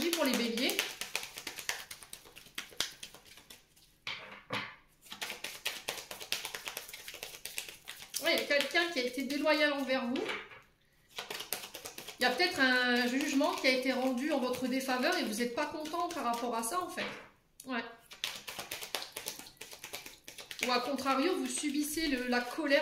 pour les béliers. Ouais, il y a quelqu'un qui a été déloyal envers vous. Il y a peut-être un jugement qui a été rendu en votre défaveur et vous n'êtes pas content par rapport à ça, en fait. Ouais. Ou à contrario, vous subissez la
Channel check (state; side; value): identical; both; correlation 1.00